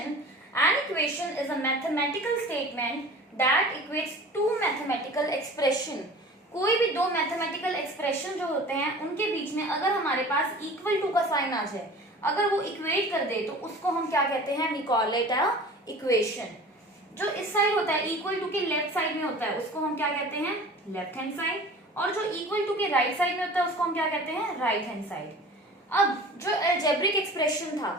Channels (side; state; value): both; normal; correlation 0.41